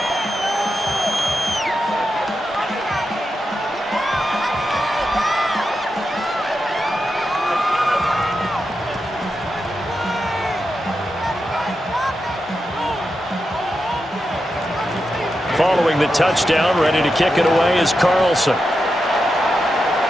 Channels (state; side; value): normal; both; correlation 0.88